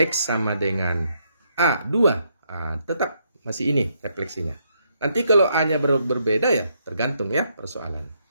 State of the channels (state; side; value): inverted; both; correlation -0.75